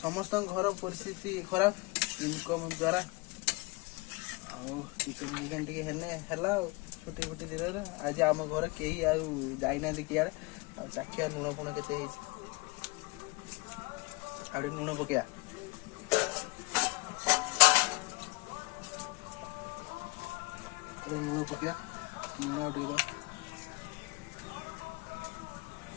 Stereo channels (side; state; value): right; quieter; 26.0 dB